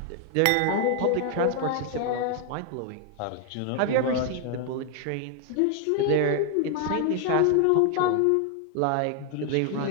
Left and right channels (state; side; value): different; both; correlation 0.00